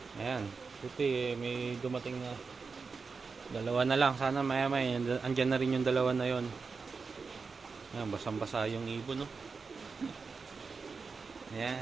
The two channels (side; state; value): left; quieter; 4.8 dB